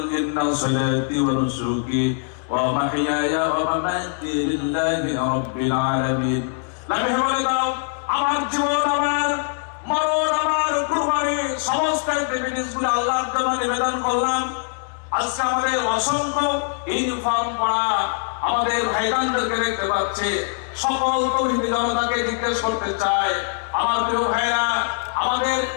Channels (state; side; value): silent; right; digital silence